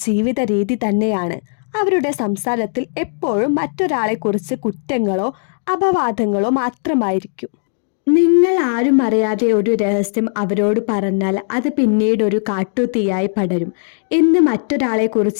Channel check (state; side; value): silent; right; digital silence